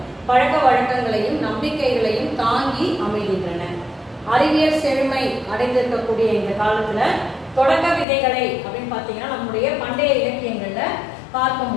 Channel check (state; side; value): drops out; right; at 8.1 s